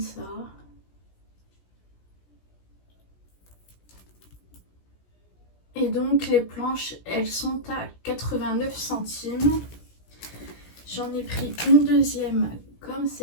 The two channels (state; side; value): late; right; 17 ms